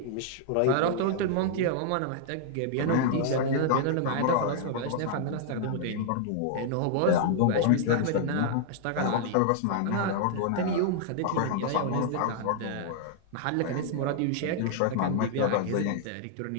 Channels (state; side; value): different; both; correlation -0.01